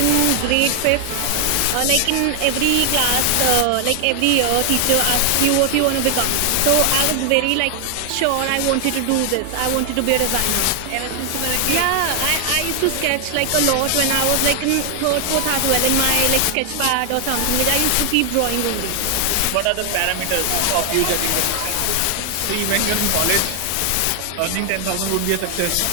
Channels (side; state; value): both; different; correlation 0.00